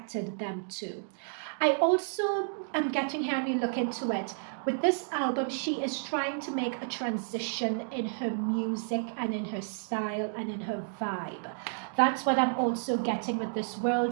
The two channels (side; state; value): left; silent; digital silence